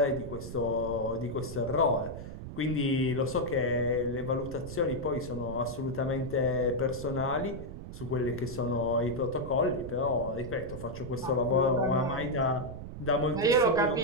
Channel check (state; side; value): noise; right; rumble, 10 dB below the sound